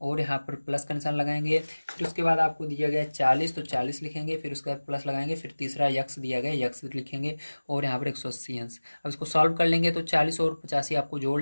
और यहाँ पर प्लस का निशान लगाएंगे। फिर उसके बाद आपको दिया गया है 40, तो 40 लिखेंगे, फिर उसके बाद प्लस लगाएंगे, फिर तीसरा यक्स दिया गया, यक्स लिखेंगे और यहाँ पर 180 अंश। अब इसको सॉल्व कर लेंगे तो 40 और 85 आपको जोड़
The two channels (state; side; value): inverted; both; correlation -1.00